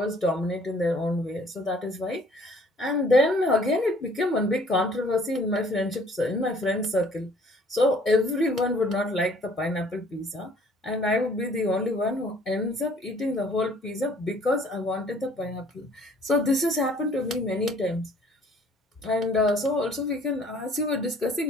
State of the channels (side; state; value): both; normal; correlation 0.57